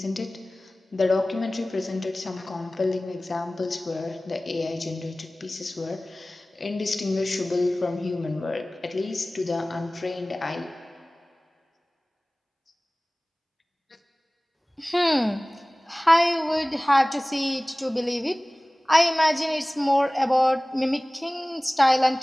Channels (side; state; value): both; normal; correlation 0.98